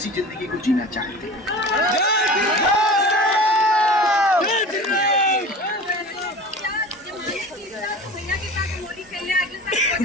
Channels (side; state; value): both; normal; correlation 0.37